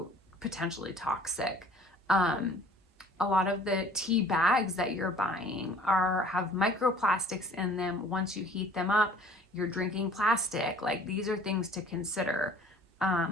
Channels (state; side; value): normal; both; correlation 0.51